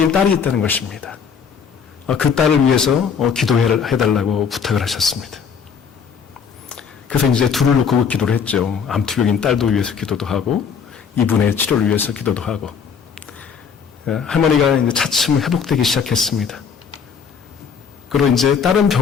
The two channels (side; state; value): right; quieter; 6.4 dB